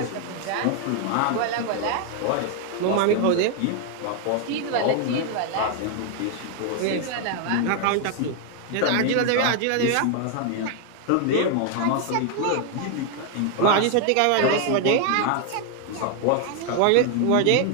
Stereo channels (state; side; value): different; both; correlation 0.00